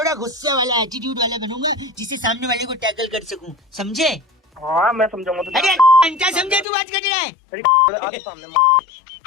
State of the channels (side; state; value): right; drops out; at 6.7 s